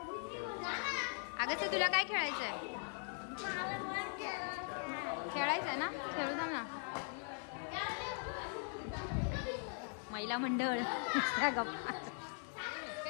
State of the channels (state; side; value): silent; right; 51 dB below the other